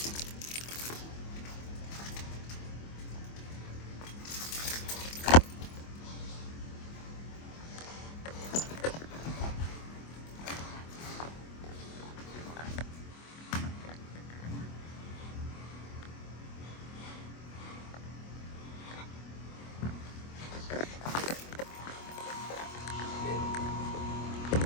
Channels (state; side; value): late; right; 25 ms